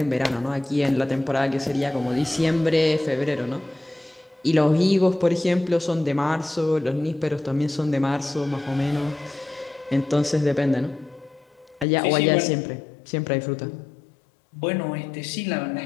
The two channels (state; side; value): drops out; right; at 11.9 s